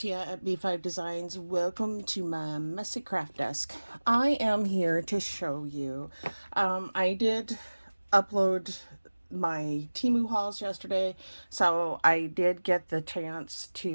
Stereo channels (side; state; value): both; inverted; correlation -1.00